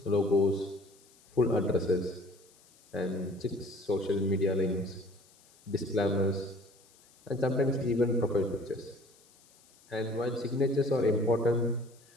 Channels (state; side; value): noise; left; hiss, 29 dB below the sound